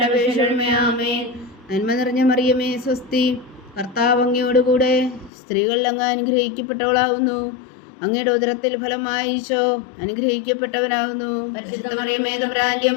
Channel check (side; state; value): right; drops out; at 5.3 s